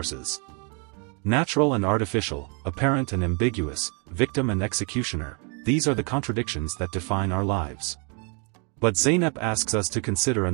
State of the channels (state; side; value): quieter; left; 35.9 dB